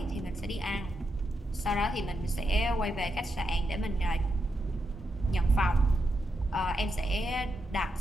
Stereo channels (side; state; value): both; normal; correlation 0.84